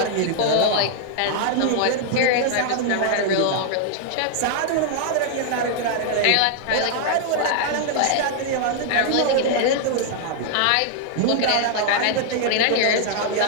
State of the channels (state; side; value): different; both; correlation -0.01